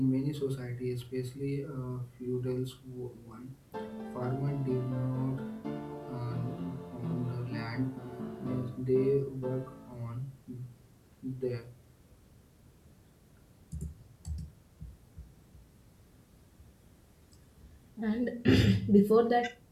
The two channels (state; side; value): identical; both; correlation 1.00